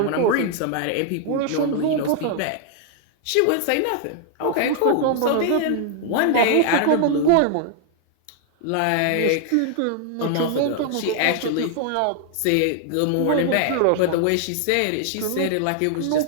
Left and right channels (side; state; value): both; different; correlation 0.00